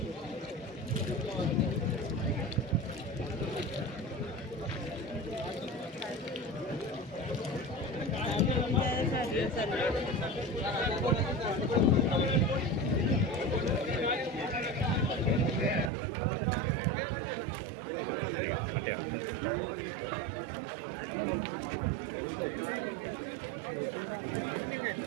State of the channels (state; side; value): drops out; left; at 15.9 s